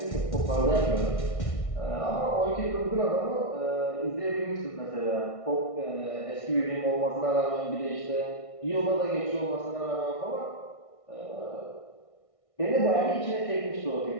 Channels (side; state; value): right; late; 1.6 ms